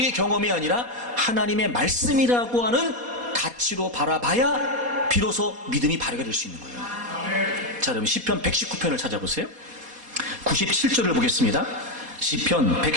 경험이 아니라 하나님의 말씀이라고 하는 가치로 바라봐야 비로소 믿음이 발휘가 될 수 있는 거예요. 자, 그럼 시편 119편을 찾아보세요. 97절을 보겠습니다. 시편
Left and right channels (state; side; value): late; left; 4.1 ms